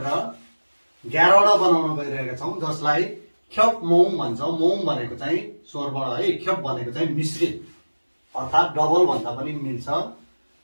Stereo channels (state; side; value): inverted; both; correlation -1.00